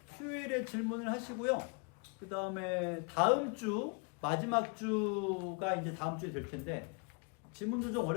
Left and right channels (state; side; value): quieter; right; 34.5 dB